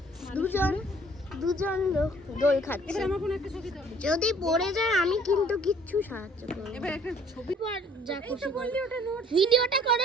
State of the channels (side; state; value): both; normal; correlation 0.56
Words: দুজন লোক দোল খাচ্ছে। এবার আমার কোনো একটা ছবি দাও। যদি পড়ে যায় আমি কিন্তু কিচ্ছু সাহায্য করব। এবার একটা ছবি পর যা এই খুশি তো করো। বললি ওটা নোট ভিডিওটা